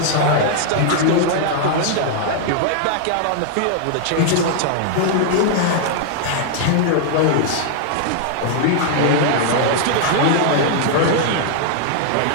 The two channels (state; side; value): different; both; correlation 0.00